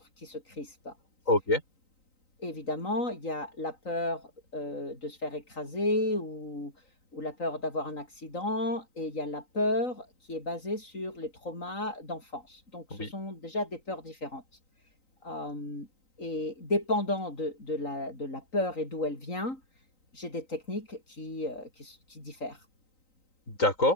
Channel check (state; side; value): late; right; 3.9 ms